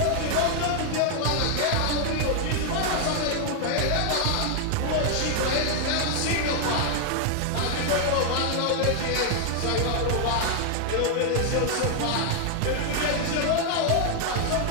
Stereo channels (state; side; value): different; both; correlation 0.00